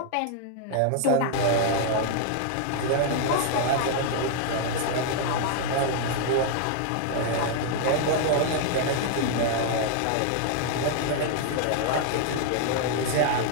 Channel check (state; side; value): different; both; correlation 0.00